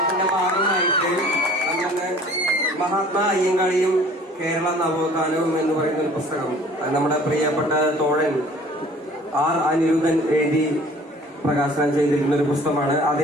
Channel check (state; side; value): normal; both; correlation 0.51